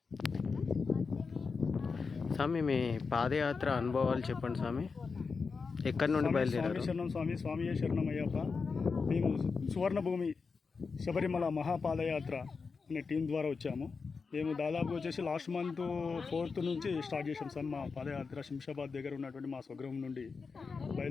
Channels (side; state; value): right; quieter; 4.9 dB